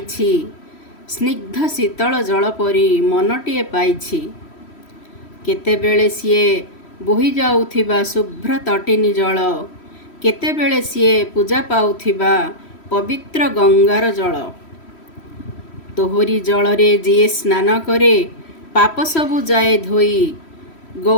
स्निग्ध शीतल जल परी मनटीए पाइछि। केतेबेले सीए बोही जाउथिबा शुभ्र तटिनी जल, केतेबेले सीए पूजा पाउथिबा पवित्र गंगार जल। तोहरी जलरे जिए स्नान करे, पाप सबु जाए धोई।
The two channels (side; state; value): right; late; 3.1 ms